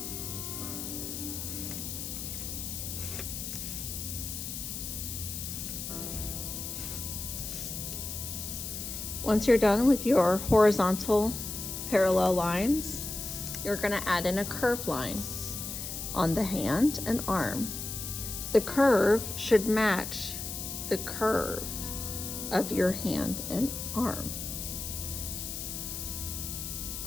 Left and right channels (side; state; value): left; noise; hiss, 6 dB below the sound